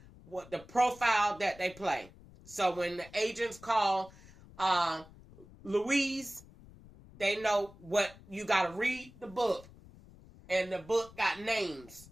what the profile that they play. So when the agents call Louise, they know what you got to read the book. And the book got names.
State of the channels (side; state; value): left; noise; rumble, 21 dB below the sound